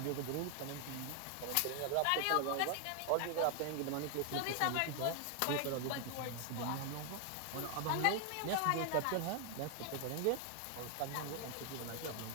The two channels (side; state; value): both; different; correlation 0.00